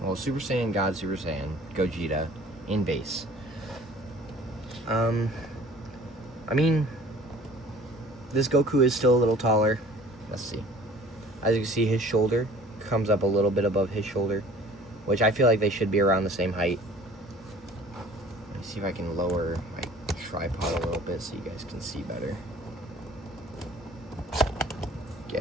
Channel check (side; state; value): both; normal; correlation 0.49